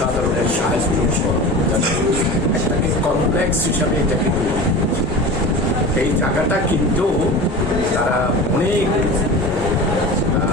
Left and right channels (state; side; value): normal; both; correlation 0.33